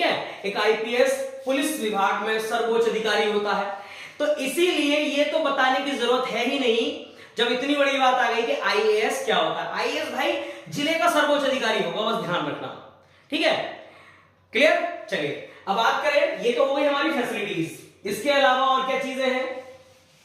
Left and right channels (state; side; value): identical; both; correlation 1.00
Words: है, एक आईपीएस पुलिस विभाग में सर्वोच्च अधिकारी होता है। तो इसीलिए ये तो बताने की जरूरत है ही नहीं जब इतनी बड़ी बात आ गई कि आईएएस क्या होता है। आईएएस भाई जिले का सर्वोच्च अधिकारी होगा, बस ध्यान रखना। ठीक है, क्लियर? चलिए अब बात करें, ये तो हो गई हमारी फैसिलिटीज। इसके अलावा और क्या चीजें हैं?